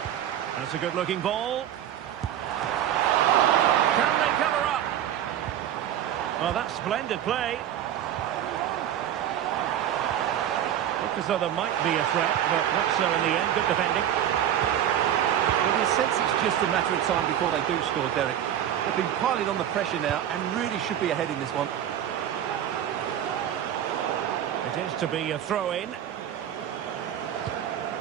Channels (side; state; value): left; quieter; 10.7 dB